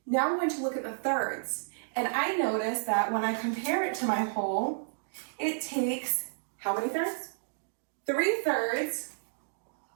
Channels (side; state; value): left; silent; digital silence